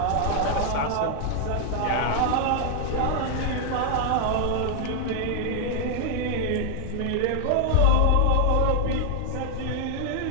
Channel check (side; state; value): both; different; correlation 0.00